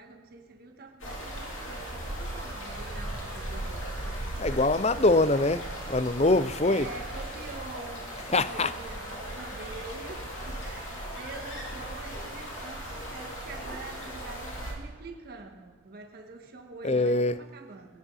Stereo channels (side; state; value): both; normal; correlation 0.29